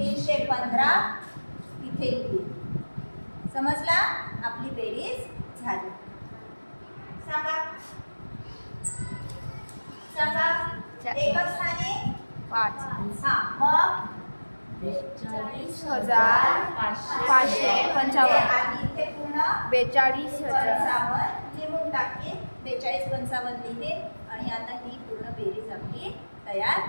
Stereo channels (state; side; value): inverted; both; correlation -1.00